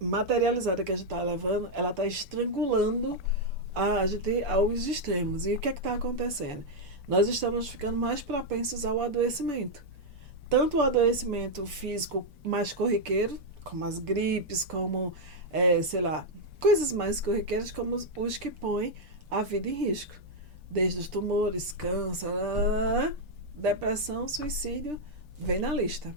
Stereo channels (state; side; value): late; left; 6.8 ms